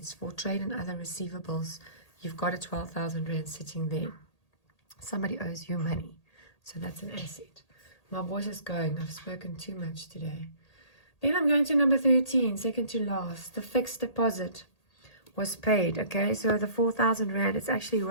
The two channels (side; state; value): right; late; 1.8 ms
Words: for trade and other receivables, you've got a 12,000 Rand sitting there. Somebody owes you money, so that's an asset. My voice is going. I've spoken too much today. Then I'm going to number 13, second to last. The fixed deposit was paid. Okay, so the 4,000 Rand is actually